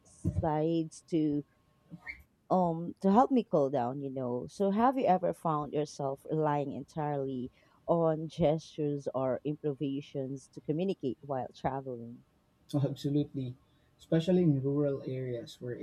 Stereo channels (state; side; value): identical; both; correlation 1.00